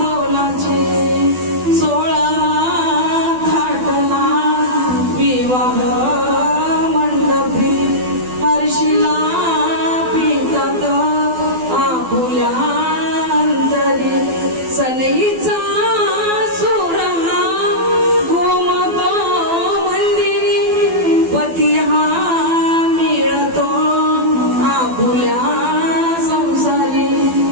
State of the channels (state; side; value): late; left; 12 ms